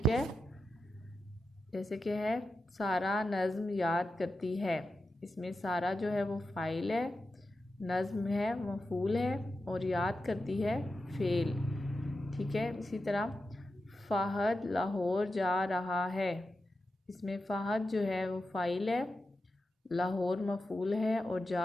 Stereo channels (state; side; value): normal; both; correlation 0.90